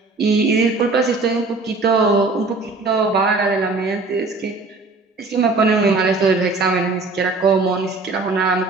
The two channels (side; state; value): left; quieter; 3.6 dB